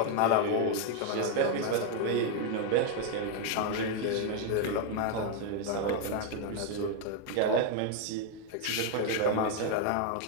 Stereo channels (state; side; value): different; both; correlation 0.00